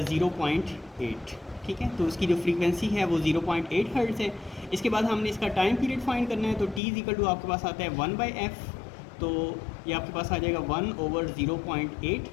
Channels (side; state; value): right; drops out; at 6.8 s